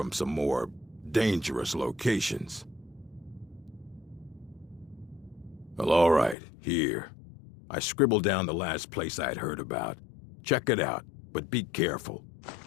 some more dangerous locations. Well, all right, here. I scribbled down the last place I'd heard about. Check it out, but be careful.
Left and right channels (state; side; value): drops out; right; at 6.4 s